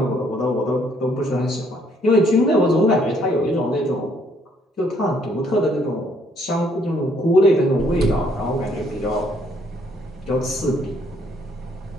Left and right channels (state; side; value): normal; both; correlation 0.67